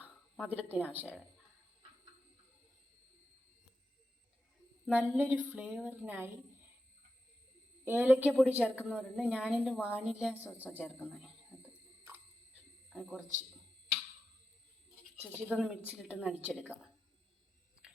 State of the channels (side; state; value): both; normal; correlation 0.89